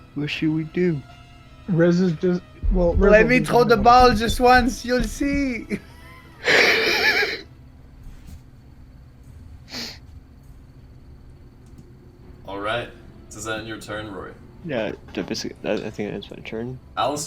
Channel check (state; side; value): identical; both; correlation 1.00